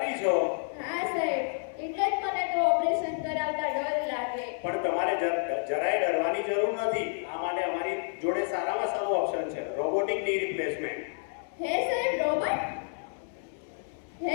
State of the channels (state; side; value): silent; right; digital silence